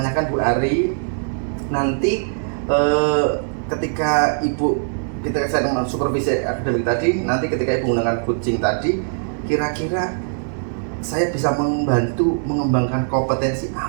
Bu Ari, nanti ketika Ibu ketika saya dengan supervisi akademik tadi, nanti ketika Ibu menggunakan coaching tadi, kira-kira saya bisa membantu mengembangkan kompetensi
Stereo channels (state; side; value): silent; left; digital silence